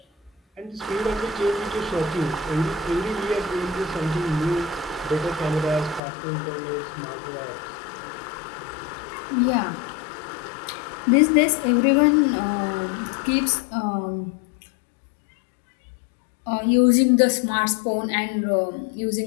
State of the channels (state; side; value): drops out; right; at 6.0 s